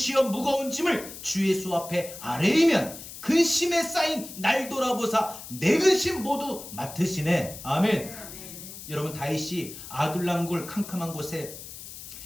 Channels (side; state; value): left; noise; hiss, 13 dB below the sound